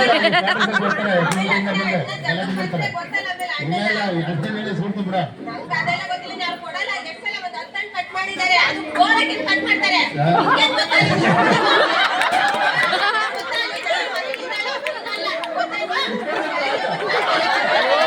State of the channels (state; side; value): identical; both; correlation 1.00